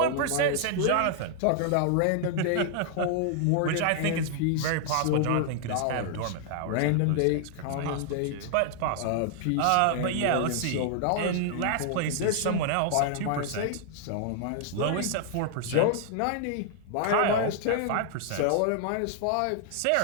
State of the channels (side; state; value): both; different; correlation -0.01